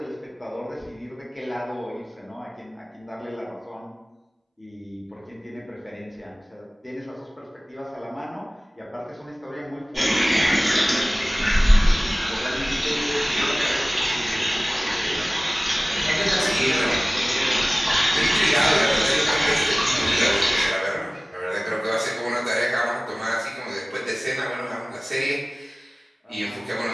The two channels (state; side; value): normal; both; correlation 0.98